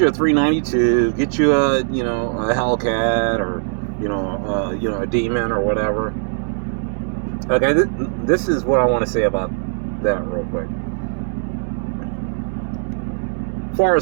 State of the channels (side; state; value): left; silent; digital silence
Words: you a 392, get you a Hellcat, or a Demon or whatever. Okay, this is what I want to say about that real quick. As far